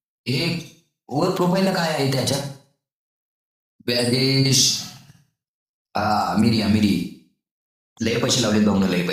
हे वर प्रोफाईलला काय आहे त्याच्या. बॅगेश. हा मिरी. लय पैसे लावले भाऊन, लय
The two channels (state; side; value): identical; both; correlation 1.00